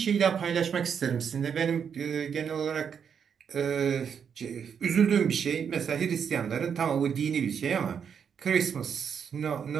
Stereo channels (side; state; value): left; quieter; 7.3 dB